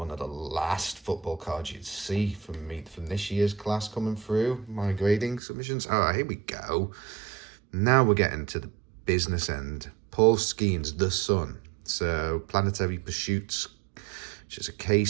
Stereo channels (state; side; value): drops out; left; at 5.4 s